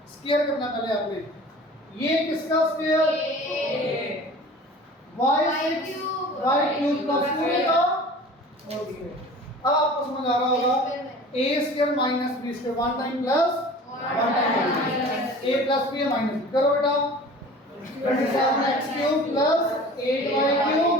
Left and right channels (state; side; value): normal; both; correlation 0.42